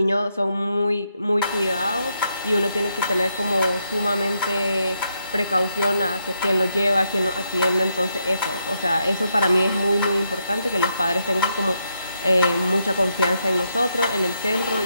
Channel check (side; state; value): both; inverted; correlation -0.80